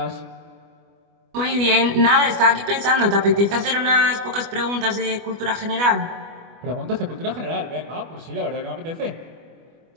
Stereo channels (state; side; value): late; left; 25 ms